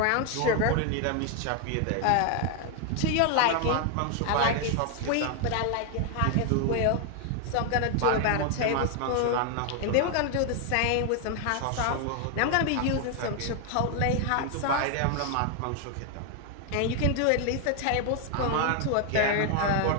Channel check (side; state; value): both; different; correlation 0.00